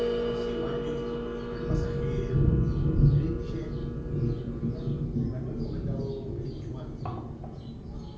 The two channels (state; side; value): identical; both; correlation 1.00